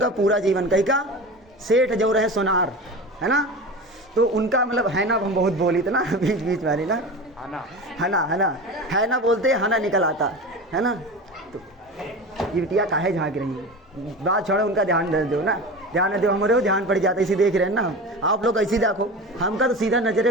पूरा जीवन। कहीं का सेठ जो रहे सोनार, है ना। तो उनका मतलब है ना, हम बहुत बोली थे ना बीच वाली ना, है ना बोलते हना निकल आता, है ना। तो ये बिटिया काहे झाँक रही है, बात छोड़ो, उनका ध्यान दो ना, ध्यान दो, हमारे ध्यान पड़ जाता है, इसी देख रहे हैं ना आप लोग, ऐसी देखो, हमका तो सीधा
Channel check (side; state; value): both; normal; correlation 0.30